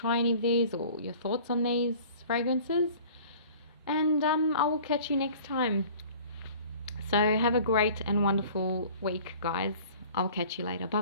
any of these, or your thoughts on these fragrances. And I will catch you next time. So have a great and wonderful week, guys. I'll catch you later. Bye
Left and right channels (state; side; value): inverted; both; correlation -0.47